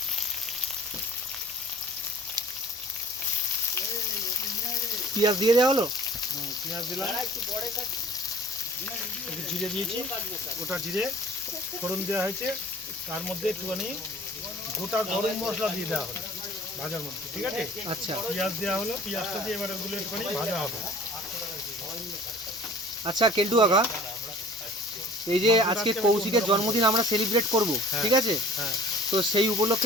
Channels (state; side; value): normal; both; correlation 0.46